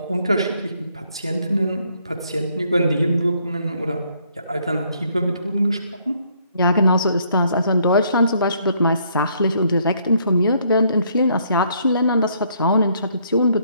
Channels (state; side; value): inverted; both; correlation -0.68